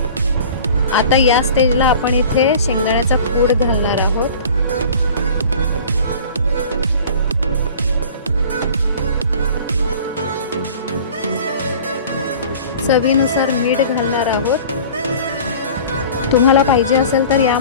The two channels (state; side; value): inverted; both; correlation -0.43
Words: आता या स्टेजला आपण इथे शेंगदाण्याचा कूट घालणार आहोत. चवीनुसार मीठ घालणार आहोत. तुम्हाला पाहिजे असेल तर